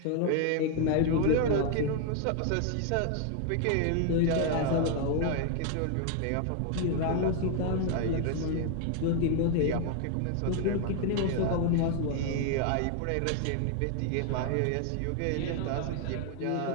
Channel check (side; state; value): both; different; correlation 0.00